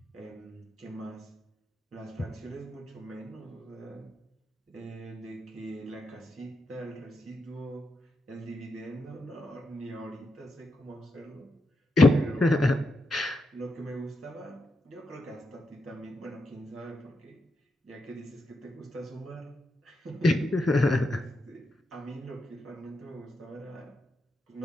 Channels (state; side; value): normal; both; correlation 0.85